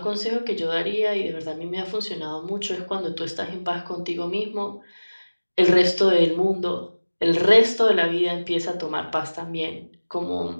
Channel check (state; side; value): inverted; both; correlation -1.00